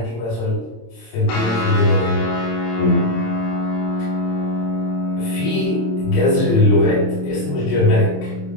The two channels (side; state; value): right; late; 27 ms